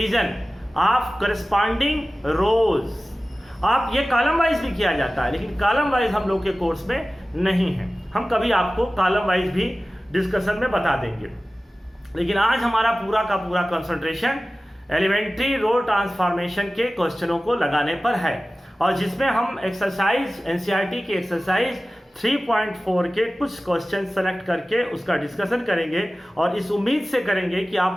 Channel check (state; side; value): normal; both; correlation 0.96